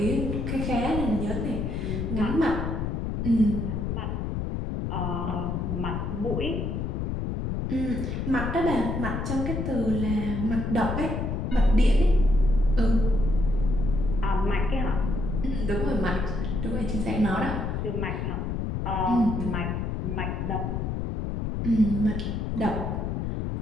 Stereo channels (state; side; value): noise; left; rumble, 2 dB below the sound